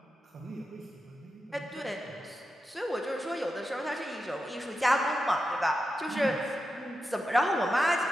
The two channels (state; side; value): normal; both; correlation 0.89